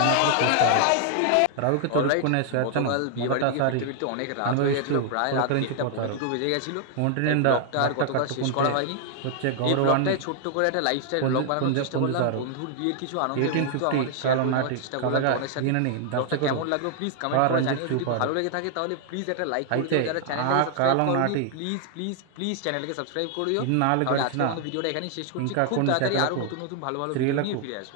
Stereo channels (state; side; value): different; both; correlation 0.00